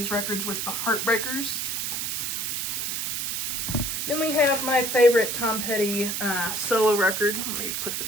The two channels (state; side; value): noise; right; hiss, 1 dB below the sound